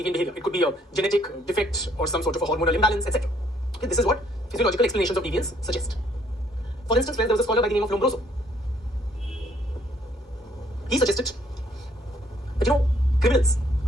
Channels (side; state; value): both; normal; correlation 0.66